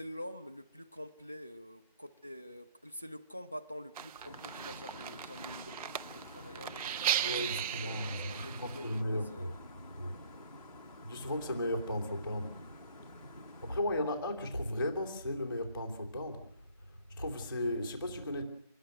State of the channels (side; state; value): both; inverted; correlation -0.57